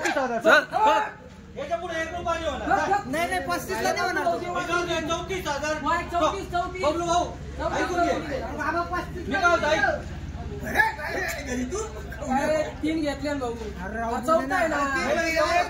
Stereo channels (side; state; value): both; identical; correlation 1.00